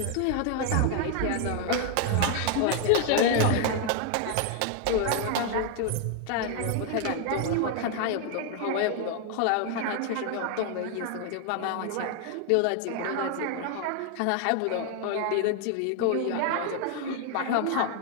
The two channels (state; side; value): different; both; correlation 0.01